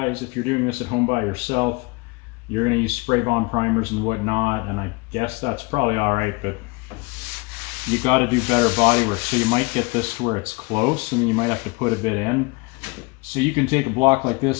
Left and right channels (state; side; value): quieter; right; 27.3 dB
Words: if you're doing this at home by yourself, you're going to use spray bomb primers and whatnot, and I guess that's probably all right, but you got to do better body work. So you might get this to where it's close, and then you might have to put a bit in. So you can take a block like